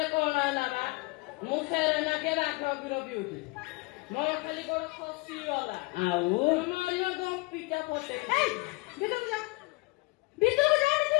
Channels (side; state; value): right; quieter; 25.0 dB